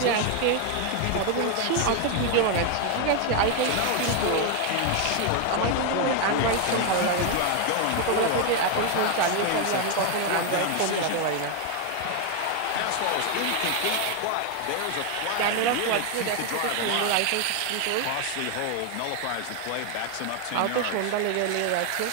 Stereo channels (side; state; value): both; different; correlation 0.01